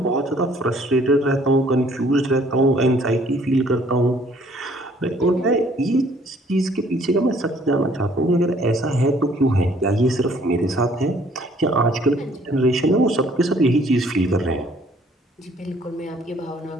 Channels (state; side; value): normal; both; correlation 0.60